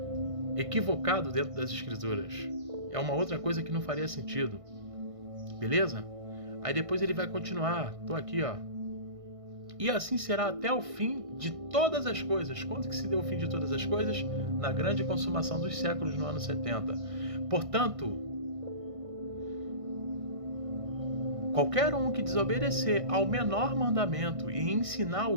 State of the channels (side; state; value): left; late; 1.6 ms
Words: Equivocado dentro das Escrituras. É uma outra coisa que não faria sentido. Beleza? Aí depois ele vai continuar. Tô aqui, ó. E assim será até o fim de todas as coisas. Quando que se deu o fim de todas as coisas? Na grande consumação dos séculos, no ano 70. Portanto, qualquer um que desobedecer ao menor mandamento e ensinar